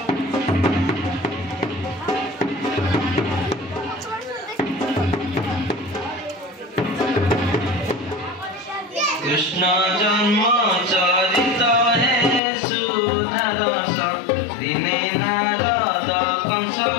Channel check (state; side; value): drops out; right; at 12.4 s